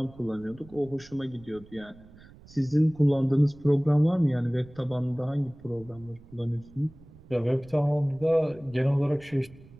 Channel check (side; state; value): right; noise; rumble, 22 dB below the sound